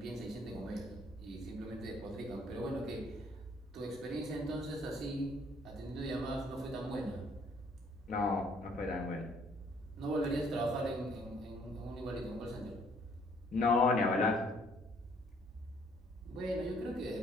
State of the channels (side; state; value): both; normal; correlation 0.63